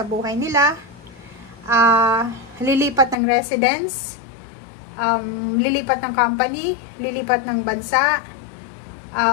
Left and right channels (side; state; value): right; drops out; at 3.2 s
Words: buhay nila. Lilipat ng residence, lilipat ng company, lilipat ng bansa.